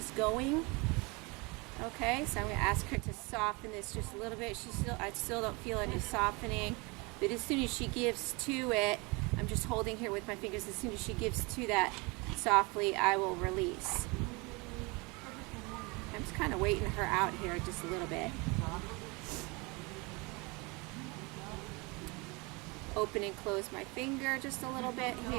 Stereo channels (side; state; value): left; quieter; 27.5 dB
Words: going. Okay, so I'm going to ask her to soften this just a little bit. I still don't feel any softening, but as soon as she gives to it, I'm just holding here with my fingers. As soon as she gives to that softly, I will release. I'm just kind of waiting her out here just a little bit. Open and close my finger just a little bit